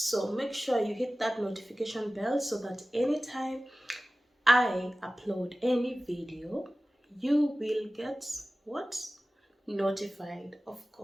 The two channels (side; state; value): both; normal; correlation 0.97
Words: make sure you hit that notification bell so that anytime I upload any video, you will get what? Notified. Of